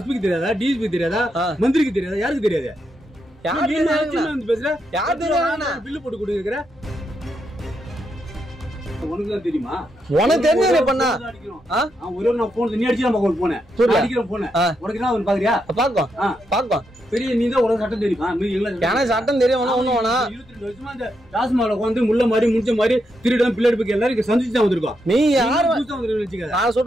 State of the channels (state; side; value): normal; both; correlation 0.82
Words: தெரியாதா, டிஎஸ்பி தெரியாதா, மந்திரிக்கு தெரியாதா, யாருக்கு தெரியாது? பில்லு போட்டு கொடுக்குற உனக்கு தான் தெரியுமா? உனக்கு தெரிஞ்சது பண்ணா ஒரே நான் போன் நீ அடிச்சு நம்ம போனேன் அடிக்கிறேன் போனேன் உனக்கு என்ன அவன் பாக்குறியா? பாக்கும் பெரிய நீ தான் ஒரு சட்டம் தெரியுமா? எனக்கு சட்டம் தெரியும். 22 வருஷமா அந்த டாஸ்மால வந்து முள்ள மாதிரி முடிச்ச மாதிரி திருடம் பிள்ளைக்கு எல்லாரும் சந்திச்சு தான் வந்திருக்கோம். நீ யாரு நான்